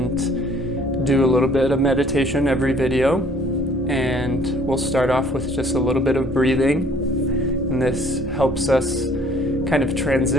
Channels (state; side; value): normal; both; correlation 0.57